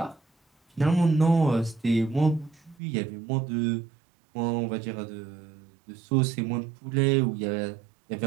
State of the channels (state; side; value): drops out; left; at 2.8 s